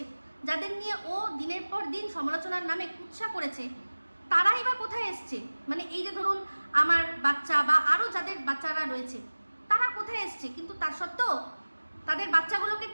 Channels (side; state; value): both; inverted; correlation -1.00